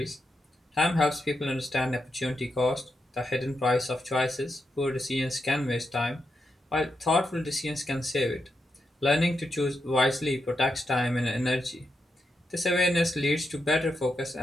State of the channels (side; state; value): both; normal; correlation 0.85